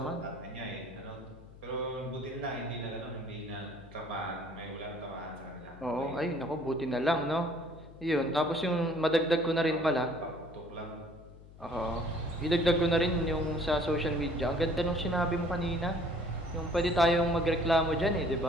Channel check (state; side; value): noise; left; hum, 20 dB below the sound